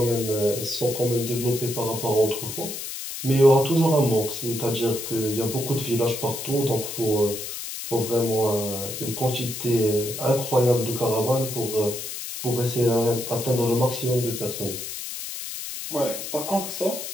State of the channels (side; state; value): left; noise; hiss, 7 dB below the sound